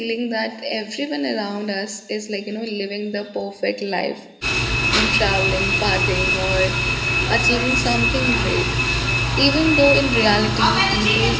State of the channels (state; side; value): identical; both; correlation 1.00